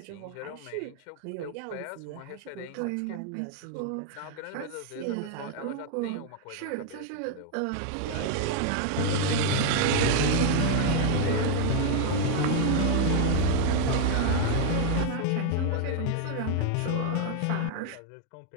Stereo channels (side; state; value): both; different; correlation 0.00